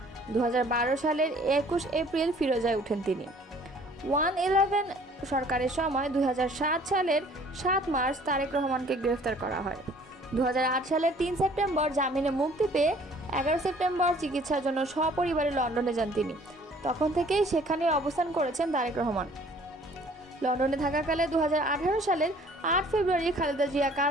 2012 সালের 21 এপ্রিল ফিরোজায় ওঠেন তিনি। 111 সরকারের সময় 2007 সালের 7 মার্চ তারেক রহমানকে গ্রেফতার করা হয়। 2008 সালের 3 সেপ্টেম্বর জামিনে মুক্তি পেয়ে 11 সেপ্টেম্বর চিকিৎসার জন্য সপরিবারে লন্ডনে যান তিনি। তখন থেকেই সেখানে অবস্থান করেছেন তারেক রহমান। লন্ডনে থাকাকালে 2018 সালের 8 ফেব্রুয়ারি খালেদা জিয়া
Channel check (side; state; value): both; normal; correlation 0.55